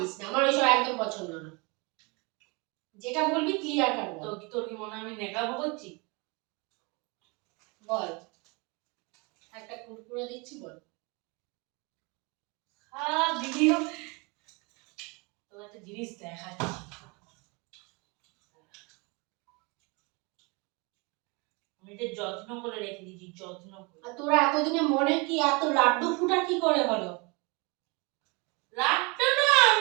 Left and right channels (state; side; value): quieter; left; 28.8 dB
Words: না, আমার ওইসব একদম পছন্দ না। যেটা বলবি ক্লিয়ার কাট বল। তোর কি মনে হয় আমি নেকাবো করছি? বল, একটা কুরকুরে দিচ্ছি বল। ভিডিও তোর একটা জিনিস দেখাচ্ছি, আমি এটা যত্ন করে রেখে দিয়েছি, যত্ন করে। আর তোরা এতদিনে মনে কি এত লাড্ডু ফুটা কি করে হলো? লাড্ডু না,